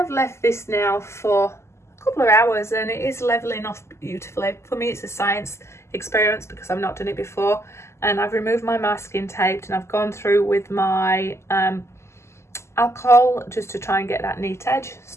left this now for a couple of hours and it is leveling off beautifully. For me it's a science experiment because I've not done it before, and I've removed my masking tape and I've gone through with my alcohol just to try and get that neat edge. It's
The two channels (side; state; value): right; late; 0.13 ms